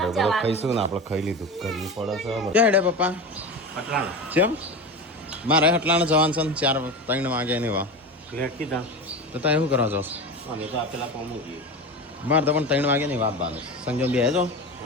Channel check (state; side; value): normal; both; correlation 0.25